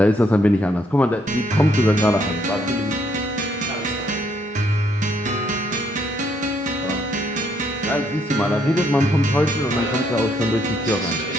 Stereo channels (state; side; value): normal; both; correlation 0.71